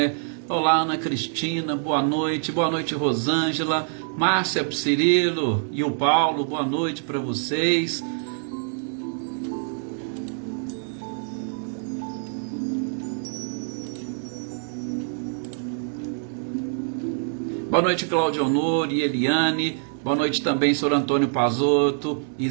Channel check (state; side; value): silent; left; digital silence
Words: Olá, Ana Cristina, boa noite. Boa noite, Rosângela, Márcia, Cirilo e o Paulo, boa noite para vocês. Boa noite, Cláudio Honor e Eliane. Boa noite também, Sr. Antônio Pazotto,